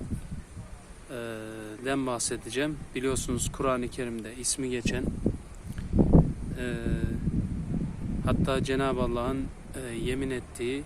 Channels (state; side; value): identical; both; correlation 1.00